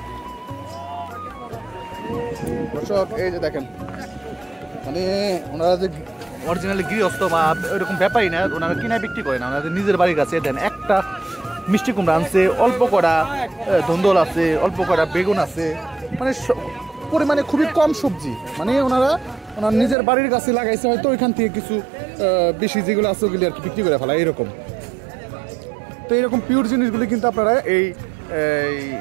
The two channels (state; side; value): drops out; left; at 20.0 s